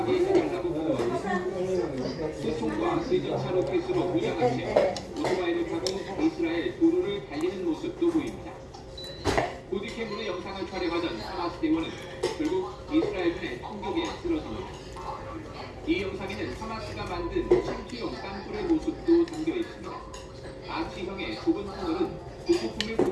해달라고 구호합니다. 소총과 대전차 로켓으로 무장한 채 오토바이를 타고 이스라엘 도로를 달리는 모습도 보입니다. 보디캠으로 영상을 촬영하던 하마스 대원은 결국 이스라엘군의 총격에 쓰러집니다. 이 영상에는 하마스가 만든 침투용 땅굴의 모습도 담겨 있습니다. 아치형의 좁은 터널은 부속품을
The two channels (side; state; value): both; identical; correlation 1.00